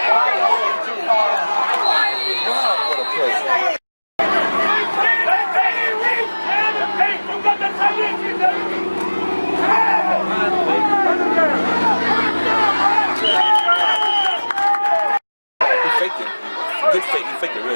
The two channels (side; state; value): both; inverted; correlation -1.00